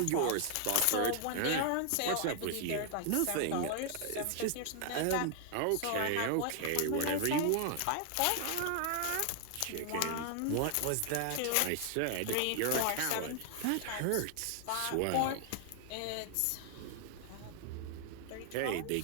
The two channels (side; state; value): both; different; correlation 0.00